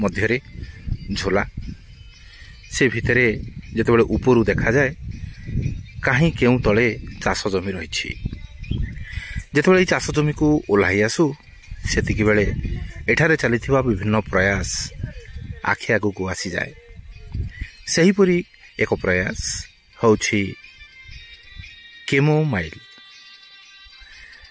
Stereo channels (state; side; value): identical; both; correlation 1.00